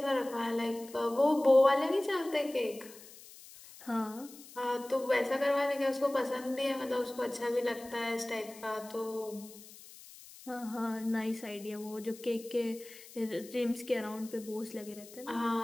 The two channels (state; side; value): noise; left; hiss, 19 dB below the sound